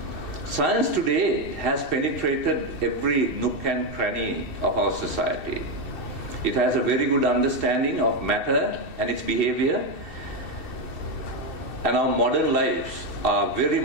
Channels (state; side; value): late; right; 2.7 ms